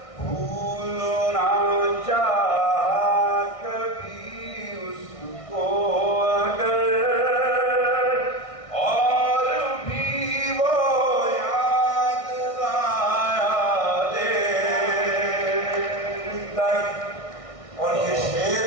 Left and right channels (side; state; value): right; late; 1.6 ms